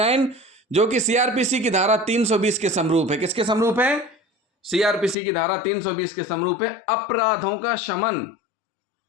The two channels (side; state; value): right; drops out; at 5.2 s